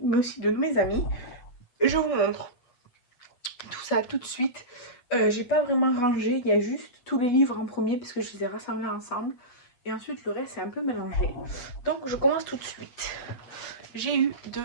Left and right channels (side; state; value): right; late; 8.3 ms